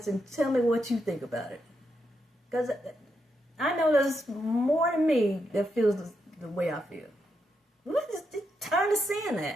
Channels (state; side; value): normal; both; correlation 0.82